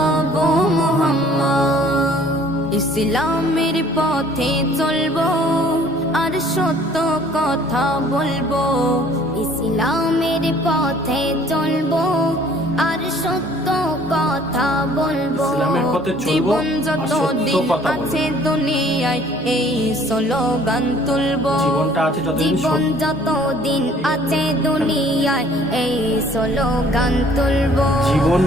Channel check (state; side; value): normal; both; correlation 0.56